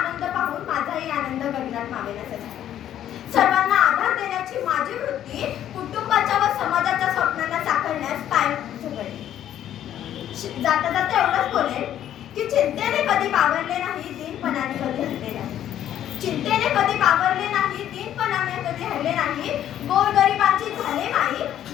पाहून माझाही आनंद गगनात मावेनासा झाला. सर्वांना आधार देण्याची माझी वृत्ती कुटुंबाच्या व समाजाच्या स्वप्नांना साकारण्यास कायम झगडली. जाता जाता एवढंच बोलेन की चिंतेने कधी बावरले नाही, दीनपणाने कधी हरले नाही. चिंतेने कधी बावरले नाही, दीनपणाने कधी हरले नाही. गोरगरिबांची झाले माई,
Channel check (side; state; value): right; quieter; 11.2 dB